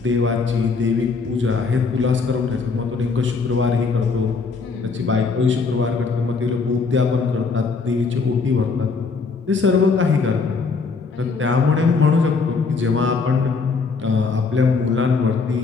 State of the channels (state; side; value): quieter; right; 4.6 dB